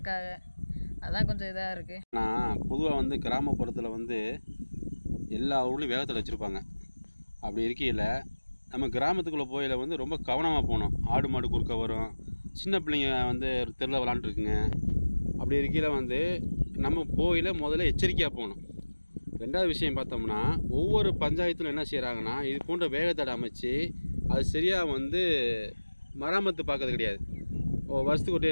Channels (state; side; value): inverted; both; correlation -1.00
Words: அதான் கொஞ்சம் இதாக இருக்குது. நான் பொதுவாக கிராமப்புறத்தில் எல்லா ஊர்லேயும் வேகத்தில் வச்சுருப்பாங்க. அப்படி இருக்கையில் நம்ம கிராமத்துக்குள்ளே போயில் ரொம்ப கவனமாக போகணும். ஆடு மாடு குறுக்க வரும், சின்ன பிள்ளைங்க தெருவில் விளாண்டுருக்குங்க. அப்படி இருக்கையில் நம்ம போயில் முதல்ல எச்சரிக்கையாக போகணும். ரெண்டாவது விஷயம் பார்த்தோம்னா, ஒவ்வொரு பஞ்சாயத்தில் என்ன செய்கிறாங்கன்னா, இது போன்ற வேகத்தடை அமைச்சு அது சரியாக மராமத்து பார்க்கறது கிடையாது. வருஷத்துக்கு ஒரு